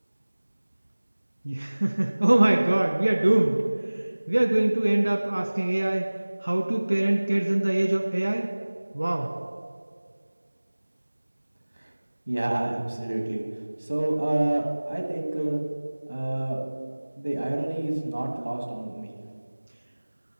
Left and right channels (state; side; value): inverted; both; correlation -1.00